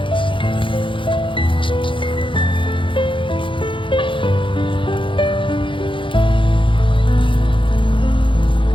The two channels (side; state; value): right; late; 0.25 ms